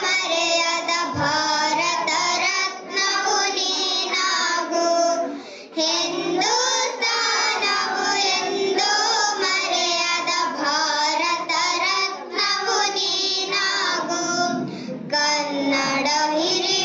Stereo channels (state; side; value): identical; both; correlation 1.00